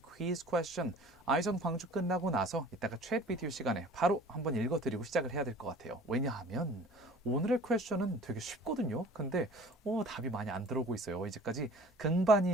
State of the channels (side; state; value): both; normal; correlation 0.47